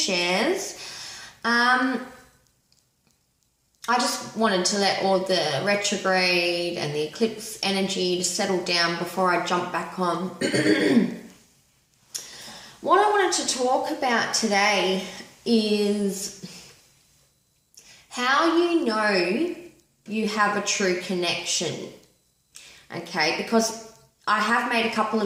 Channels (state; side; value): identical; both; correlation 1.00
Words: I just wanted to let all the retrograde and the eclipse energy settle down before I jump back on. What I wanted to talk about today is how you know you have a true connection. Okay, because I have made a couple